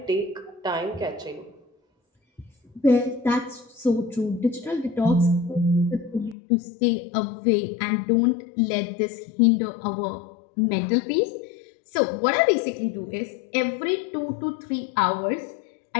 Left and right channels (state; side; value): drops out; right; at 6.4 s